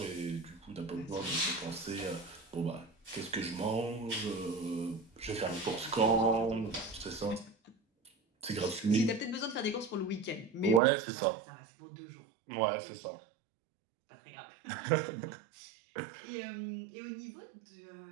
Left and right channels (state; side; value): drops out; left; at 10.8 s